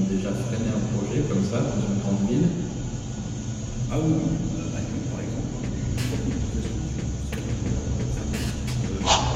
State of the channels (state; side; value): identical; both; correlation 1.00